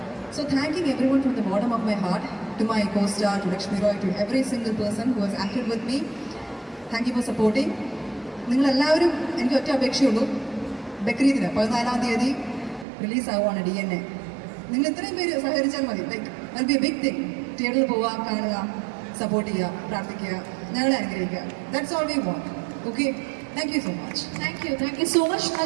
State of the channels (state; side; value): drops out; left; at 12.9 s